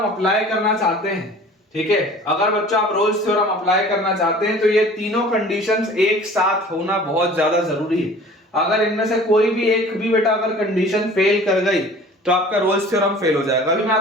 अप्लाई करना चाहते हैं, ठीक है। अगर बच्चों आप रोल्स थ्योरम अप्लाई करना चाहते हैं तो ये तीनों कंडीशंस एक साथ होना बहुत ज्यादा जरूरी है। अगर इनमें से कोई भी एक भी बेटा अगर कंडीशन फेल कर गई तो आपका रोल्स थ्योरम फेल हो जाएगा। अभी मैं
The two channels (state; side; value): normal; both; correlation 0.46